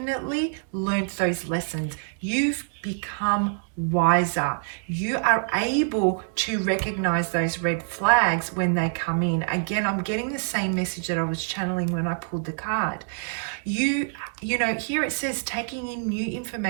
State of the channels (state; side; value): silent; left; digital silence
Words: learned those lessons. You've become wiser. You are able to recognize those red flags when they come in. Again, I'm getting the same message that I was channeling when I pulled the card. You know, here it says taking in new